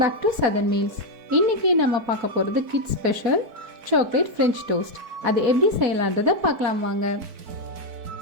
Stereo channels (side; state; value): left; late; 4.5 ms